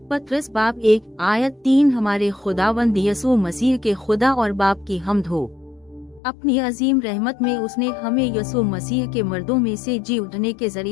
पत्रस बाब 1 आयत 3 हमारे खुदावंद यसू मसीह के खुदा और बाप की हम्द हो। अपनी अजीम रहमत में उसने हमें यसू मसीह के मर्दों में से जी उठने के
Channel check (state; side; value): drops out; right; at 6.2 s